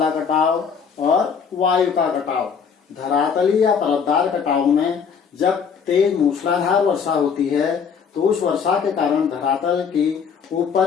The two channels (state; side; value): quieter; right; 6.5 dB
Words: कटाव और वायु का कटाव। धरातली या परतदार कटाव में जब तेज मूसलाधार वर्षा होती है तो उस वर्षा के कारण धरातल की